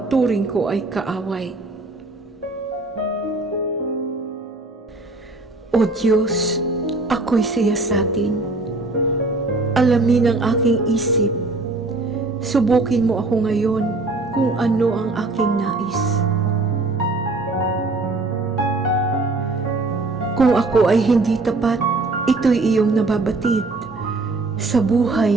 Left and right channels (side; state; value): left; quieter; 3.2 dB